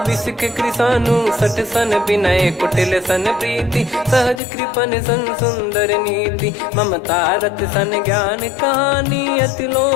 बिसक कृसानु। 60 सन विनय कुटिल सन प्रीति, सहज कृपन सन सुंदर नीति। ममता रत सन ज्ञान कहानी, अति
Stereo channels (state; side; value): drops out; right; at 4.4 s